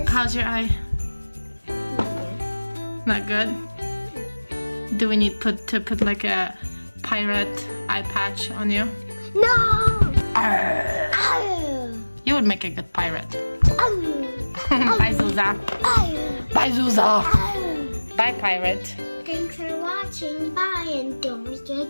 How's your eye? Not good? Do we need to put like a pirate eye patch on you? No! Arr. Oh. You would make a good pirate. Oh. Bye, Zuza. Oh. Bye, Zuza. Oh. Bye, pirate. Thanks for watching. Bye, and don't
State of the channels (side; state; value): both; inverted; correlation -1.00